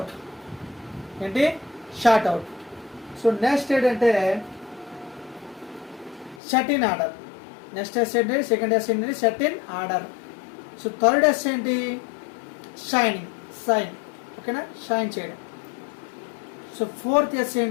ఏంటి షార్ట్ అవుట్. సో నెక్స్ట్ ఏంటంటే set in order. Next S ఏంటి, సెకండ్ S ఏంటి set in order. So third S ఏంటి షైనింగ్, సైన్. ఓకేనా, షైన్ చేయడం. సో ఫోర్త్ S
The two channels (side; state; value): right; drops out; at 6.4 s